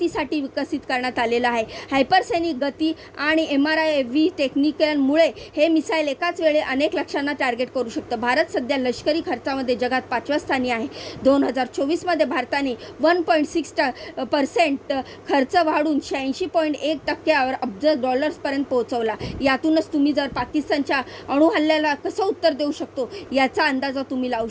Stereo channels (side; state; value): both; identical; correlation 1.00